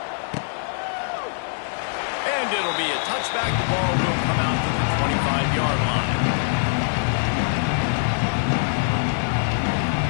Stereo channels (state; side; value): silent; right; digital silence